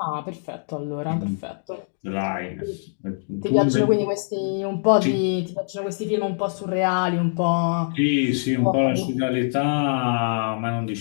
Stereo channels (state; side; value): silent; right; digital silence